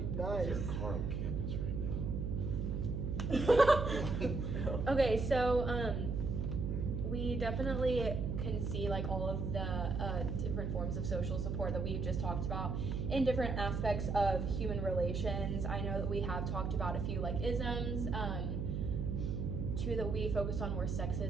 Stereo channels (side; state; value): right; noise; hum, 1 dB below the sound